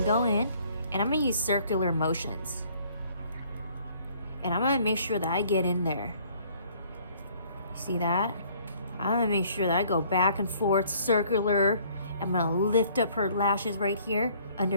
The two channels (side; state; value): both; inverted; correlation -0.59